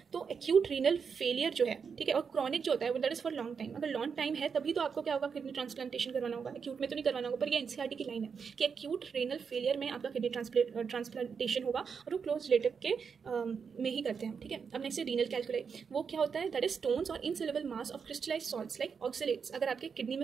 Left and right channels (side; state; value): left; quieter; 6.1 dB